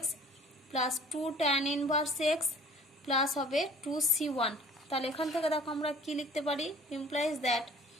plus 2 tan inverse x plus হবে 2 c1। তাহলে এখান থেকে দেখো আমরা কি লিখতে পারি ইমপ্লাইজ দ্যাট,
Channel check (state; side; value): normal; both; correlation 0.50